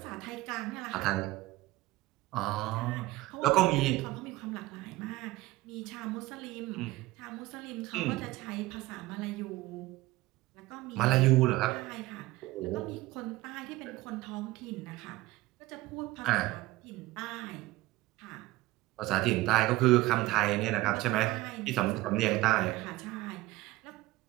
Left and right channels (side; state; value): left; quieter; 18.6 dB